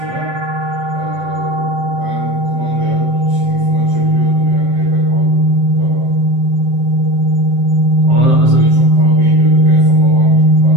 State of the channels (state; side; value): late; left; 7.7 ms